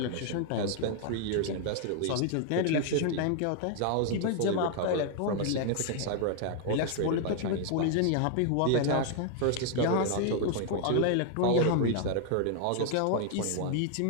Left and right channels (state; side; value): different; both; correlation 0.00